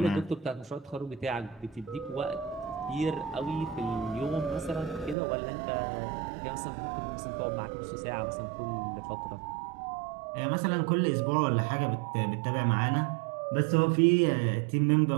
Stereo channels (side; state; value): left; drops out; at 5.2 s